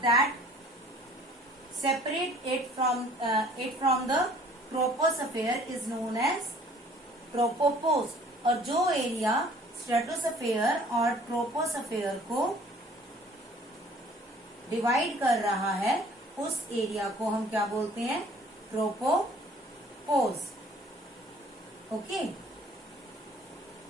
that separate it from the troposphere is known as tropopause. और जो एरिया स्ट्रेटोस्फेयर और ट्रोपोस्फेयर को डिवाइड कर रहा है उस एरिया को हम क्या बोलते हैं? Tropopause. Okay,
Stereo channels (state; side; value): normal; both; correlation 0.54